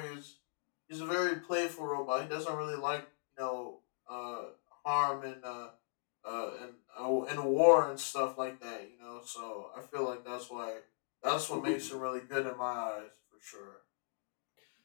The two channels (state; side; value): silent; right; digital silence